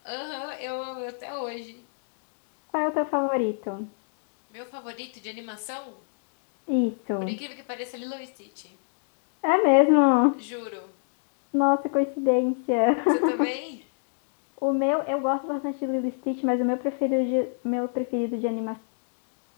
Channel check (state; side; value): silent; right; digital silence